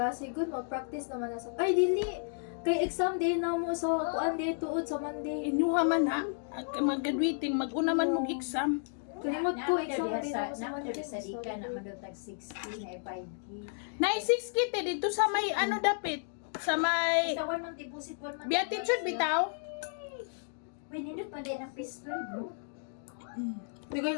Good, mag-practice naman na sa... Ay, dili! Kay exam day na mo sa kuan day tuod sa Monday. Inyuha man ha. Mag-graduating. Mag-una man mong exam. Kalimot ko, exam day na mo sa Naman Monday. doon sa Dika, naman doon tag 60 na 5K. Nay 6 kite dito sa may ano dapit. Sa may... Basta 1 month deposit, 1 month. Beatitude bitaw. Uy, nindot pa din ang pistol, bro. Di kayo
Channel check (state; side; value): silent; right; digital silence